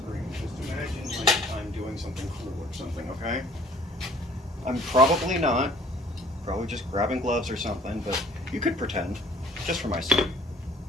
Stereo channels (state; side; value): normal; both; correlation 0.55